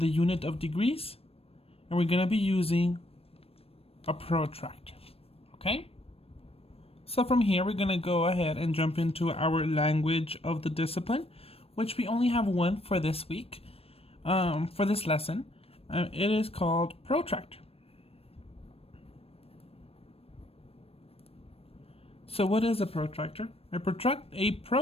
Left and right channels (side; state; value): right; late; 0.28 ms